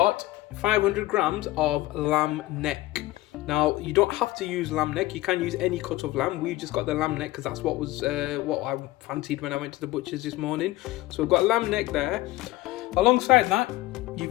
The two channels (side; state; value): right; quieter; 17.9 dB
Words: 500 grams of lamb neck. Now you don't have to use lamb neck, you can use any cut of lamb. We've just got the lamb neck because that's what was what I fancied when I went to the butcher's this morning. So we've got lamb neck there. Alongside that,